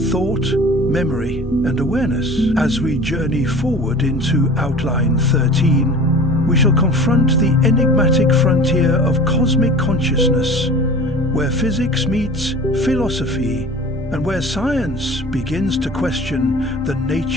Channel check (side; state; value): both; normal; correlation 0.41